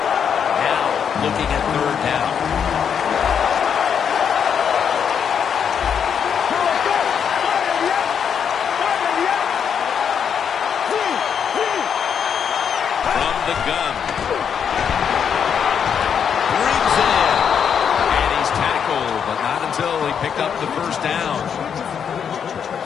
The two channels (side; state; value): right; quieter; 7.6 dB